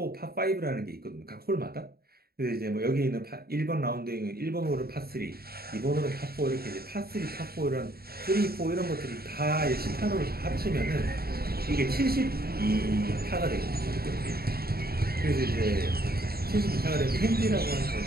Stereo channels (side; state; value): left; late; 0.45 ms